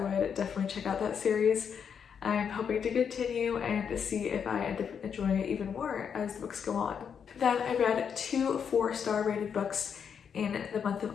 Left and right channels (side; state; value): right; quieter; 7.2 dB